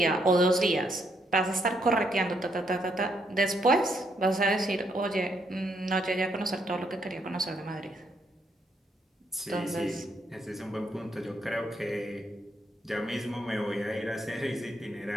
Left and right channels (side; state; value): both; normal; correlation 0.74